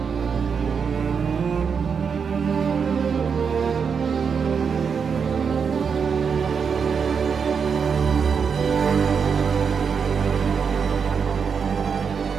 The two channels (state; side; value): quieter; left; 6.2 dB